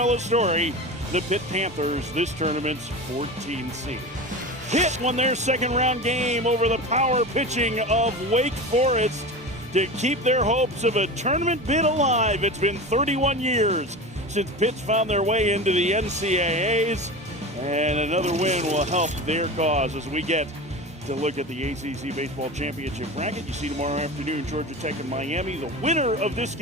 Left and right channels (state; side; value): normal; both; correlation 0.28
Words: story, the Pitt Panthers, this tournament's 14th seed. Pitt won their second round game over the power pitching of Wake Forest to keep their hopes of a tournament bid alive. It's been 31 years since Pitt's found their way into the NCAAs, and another win will help their cause as we get to look at the ACC Baseball Championship bracket. You see tomorrow afternoon, Georgia Tech and Miami. The winner of this